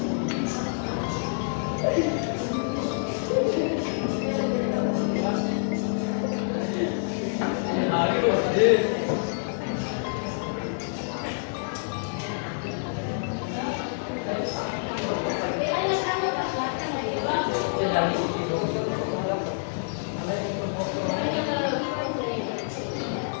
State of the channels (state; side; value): silent; right; digital silence